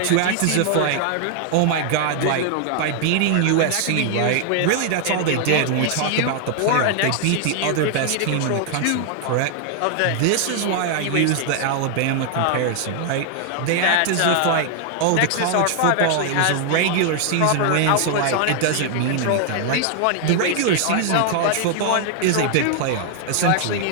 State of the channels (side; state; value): both; different; correlation 0.00